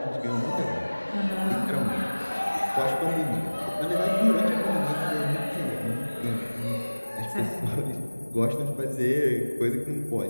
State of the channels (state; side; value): inverted; both; correlation -1.00